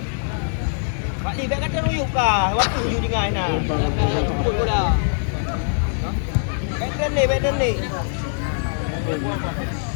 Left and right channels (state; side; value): silent; right; 64 dB below the other